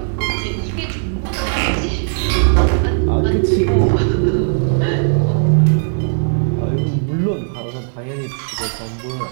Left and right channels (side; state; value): left; silent; 56 dB below the other